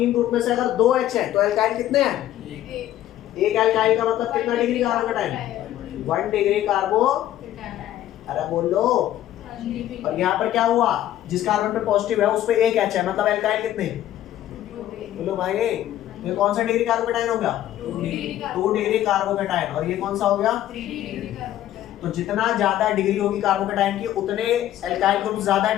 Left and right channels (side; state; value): right; quieter; 12.8 dB